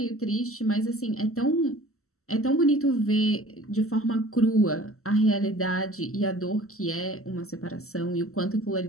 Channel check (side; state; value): right; late; 0.63 ms